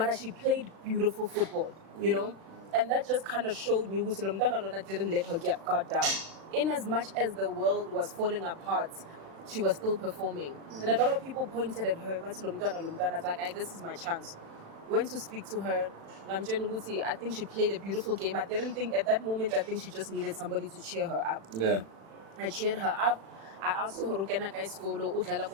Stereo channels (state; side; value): late; left; 36 ms